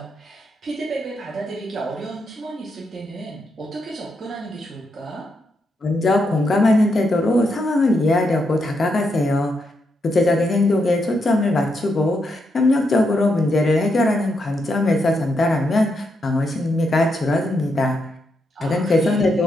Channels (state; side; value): normal; both; correlation 0.81